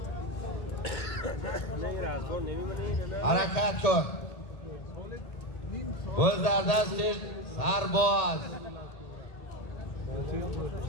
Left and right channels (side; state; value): right; late; 1.8 ms